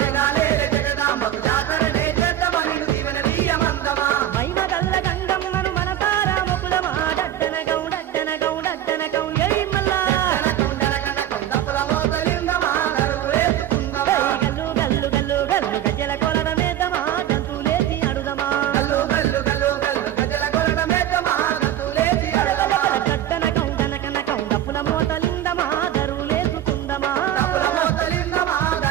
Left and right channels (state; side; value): quieter; left; 12.0 dB